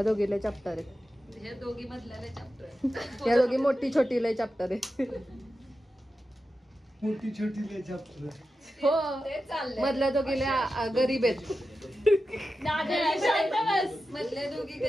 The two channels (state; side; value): normal; both; correlation 0.91